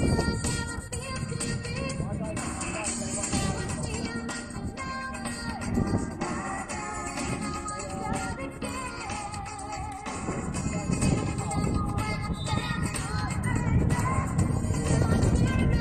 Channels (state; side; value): identical; both; correlation 1.00